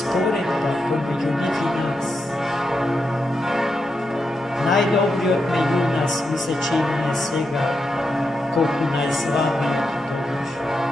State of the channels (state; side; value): normal; both; correlation 0.85